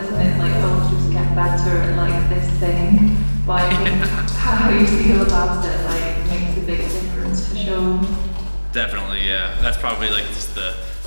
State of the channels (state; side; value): inverted; both; correlation -1.00